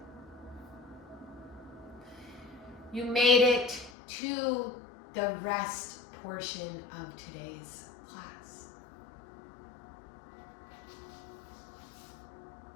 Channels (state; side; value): drops out; right; at 3.9 s